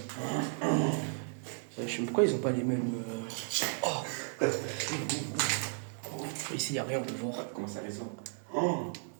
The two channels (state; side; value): silent; left; 55 dB below the other